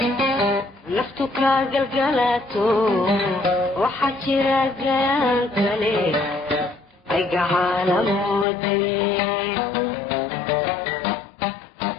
naftu ka galgalato waxa jira gaan kale ay gacalamoode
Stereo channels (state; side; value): drops out; right; at 8.5 s